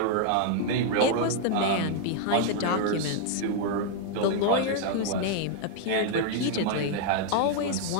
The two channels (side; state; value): both; different; correlation 0.00